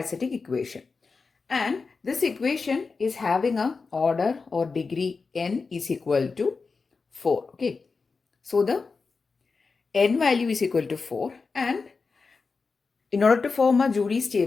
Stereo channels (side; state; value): right; quieter; 4.5 dB